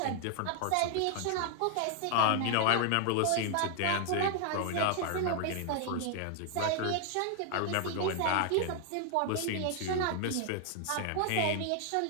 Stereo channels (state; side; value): different; both; correlation 0.00